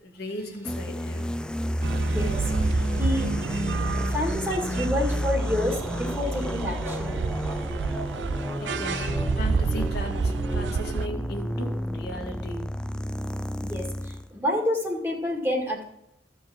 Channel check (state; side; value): normal; both; correlation 0.76